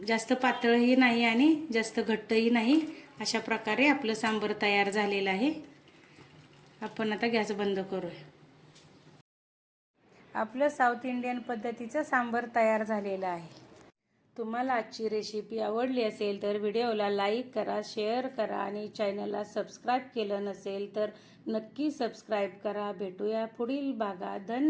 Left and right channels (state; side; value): identical; both; correlation 1.00